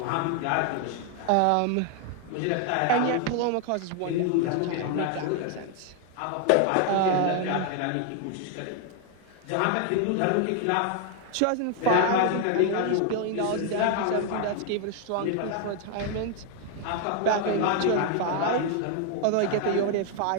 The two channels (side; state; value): both; different; correlation 0.00